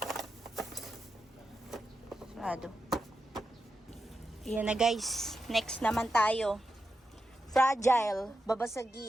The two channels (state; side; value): normal; both; correlation 0.88